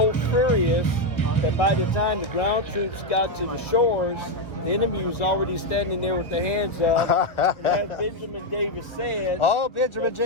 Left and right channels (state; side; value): late; right; 1.1 ms